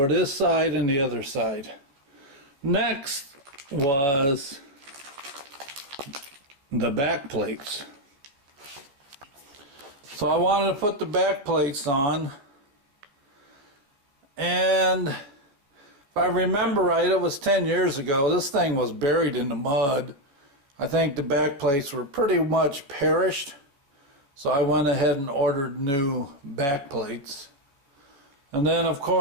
this side and the other side. Next was the back plates. So I wanted to put the back plates on. And if I remember right, it was 10 years ago. This thing was buried in the mud. I think the back plates were pretty much perished. So I went ahead and ordered new back plates. And then of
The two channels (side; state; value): left; late; 14 ms